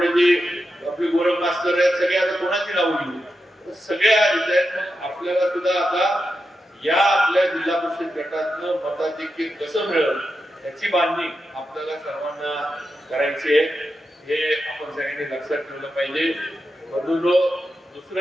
आपले गोरख मास्तर आहेत सगळे. आता कोणाची नाव घेऊ सगळे आहेत. आपल्याला सुद्धा आता या आपल्या जिल्हा परिषद गटातनं मताधिक्य कसं मिळेल याची बांधणी आपल्याला सर्वांना करायची आहे. हे आपण सगळ्यांनी लक्षात ठेवलं पाहिजे. बंधूंनो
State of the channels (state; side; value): normal; both; correlation 0.88